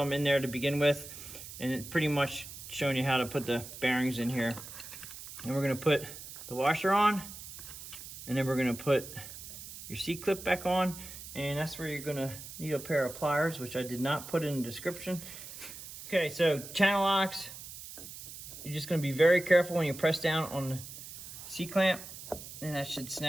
in there to begin with, and it pretty much showing you how to put the bearings in here. And we're gonna put the washer on, and then we're gonna put your C-clip back on, and that's where you're gonna need a pair of pliers, which I did not put in the description. Okay, so channel locks, you're just gonna be very careful when you press down on the C-clamp, and that should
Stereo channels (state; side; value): noise; right; hiss, 12 dB below the sound